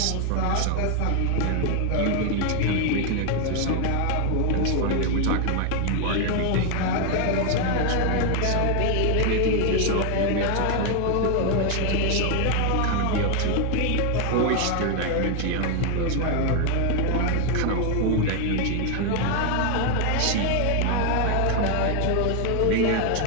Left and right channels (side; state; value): both; different; correlation 0.01